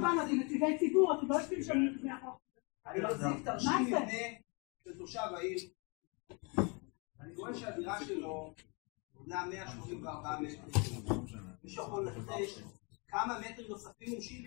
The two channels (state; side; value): quieter; right; 32.0 dB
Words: באנו, זה נציגי ציבור, אתם לא יושבים שם לפני החוק. אני מחזיק תרשים מבנה של תושב העיר. אני רואה שהדירה שלו בונה 184 מטרים. מישהו יכול לנחש כמה מטרים נוספים?